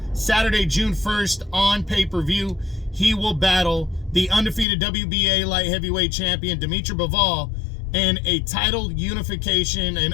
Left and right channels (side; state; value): right; drops out; at 4.7 s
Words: Saturday, June 1st on pay-per-view. He will battle the undefeated WBA light heavyweight champion Dimitri Bivol in a